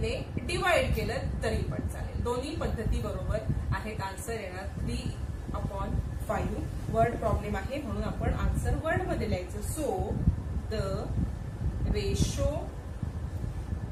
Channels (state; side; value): identical; both; correlation 1.00